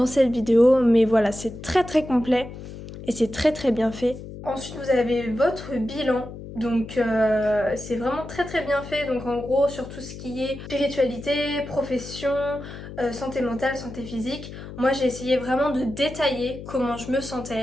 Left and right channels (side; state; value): left; noise; hum, 12 dB below the sound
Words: cette vidéo, mais voilà, c'est très très complet et c'est très très bien fait. Ensuite, vous avez votre bilan. Donc c'est vraiment très très bien fait, donc en gros sur tout ce qui est spiritualité, profession, santé mentale, santé physique, moi j'ai essayé vraiment de détailler comment je me